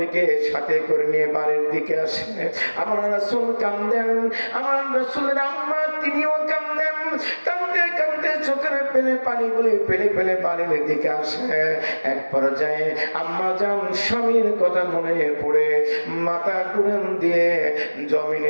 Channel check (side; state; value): both; inverted; correlation -1.00